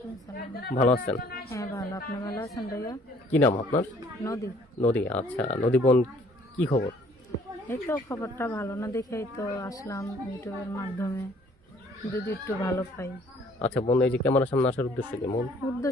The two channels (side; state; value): both; normal; correlation 0.59